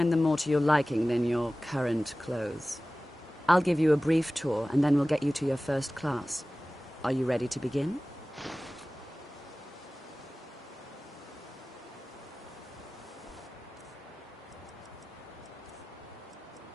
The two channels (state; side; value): normal; both; correlation 0.97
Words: them more to your liking than your current clothes. I'll give you a brief tour, and then we'll get you to your first class. Are you ready to begin?